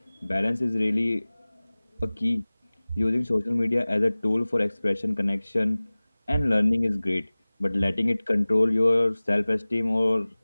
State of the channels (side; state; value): both; inverted; correlation -0.99